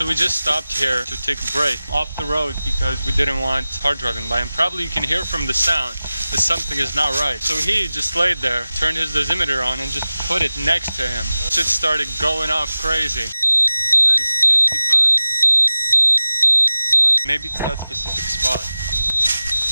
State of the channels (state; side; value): inverted; both; correlation -0.96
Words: we just stopped here to take a break off the road because we didn't want car driving by, and probably you can hear from the sound that something is not right. So he just laid there, turned his dosimeter on and just put it next to him. Shit started going off crazy. That is 55. Maybe it's that specific spot.